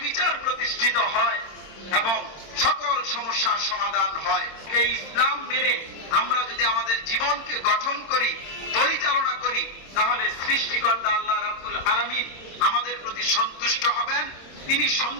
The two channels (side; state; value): right; late; 26 ms